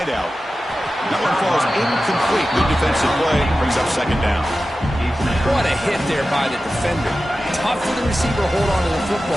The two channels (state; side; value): normal; both; correlation 0.94